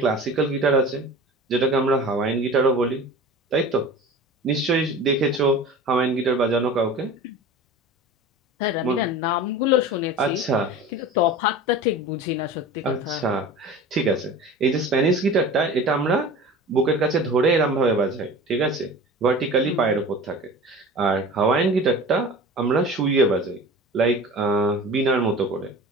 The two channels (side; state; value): both; normal; correlation 0.37